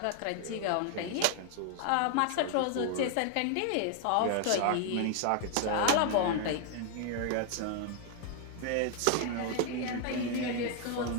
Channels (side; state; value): both; different; correlation 0.00